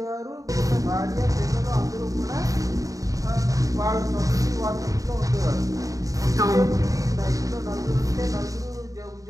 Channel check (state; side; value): late; left; 0.16 ms